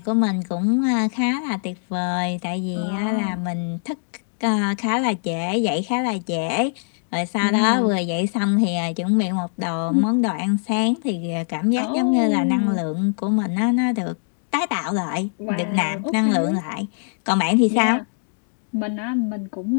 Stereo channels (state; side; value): silent; right; digital silence